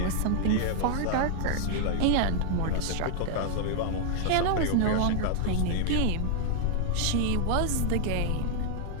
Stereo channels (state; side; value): different; both; correlation 0.00